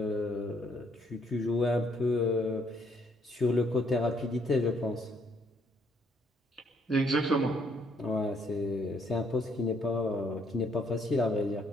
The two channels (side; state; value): both; normal; correlation 0.69